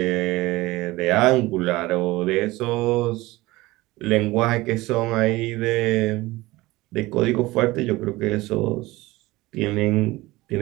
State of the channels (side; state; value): left; quieter; 19.7 dB